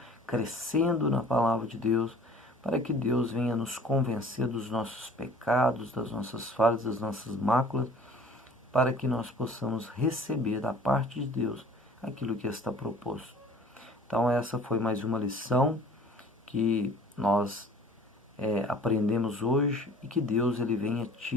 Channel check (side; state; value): both; normal; correlation 0.48